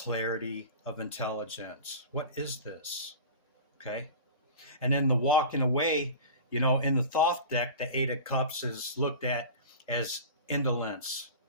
of intelligence. What is this? Okay? And then the walking away, you know, in the Thoth deck, the 8 of Cups is looked at as indolence.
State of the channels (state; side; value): inverted; both; correlation -0.35